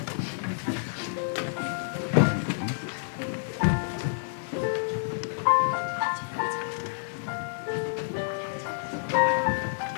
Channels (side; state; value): right; silent; digital silence